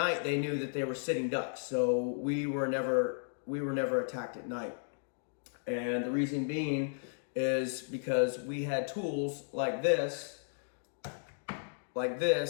they knew that they were sitting ducks, so we were never attacked at night. And the reason being is because we had tools like this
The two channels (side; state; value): right; silent; digital silence